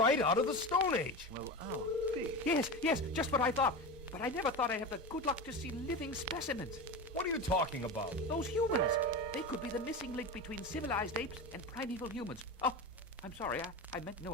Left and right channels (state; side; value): normal; both; correlation 0.24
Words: out of the Stone Age! Well, oh, Pete. Yes, just what I thought. But I never thought I'd have the good luck to see living specimens. What are you talking about? Those humans. They could be the missing link between civilized apes and primeval humans. Oh, I'm sorry. I meant no